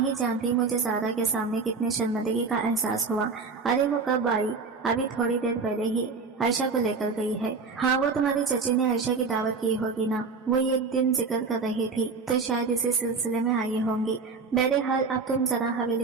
जानती मुझे ज़ारा के सामने कितनी शर्मिंदगी का एहसास हुआ। अरे वो कब आई? अभी थोड़ी देर पहले ही आयशा को लेकर गई है। हाँ, वो तुम्हारी चची ने आयशा की दावत की होगी ना, वो एक दिन जिक्र कर रही थी तो शायद इसी सिलसिले में आई होंगी। बहरहाल अब तुम जरा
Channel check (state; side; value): quieter; left; 4.6 dB